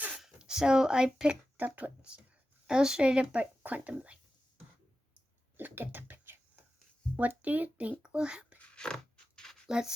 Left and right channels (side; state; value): both; normal; correlation 0.92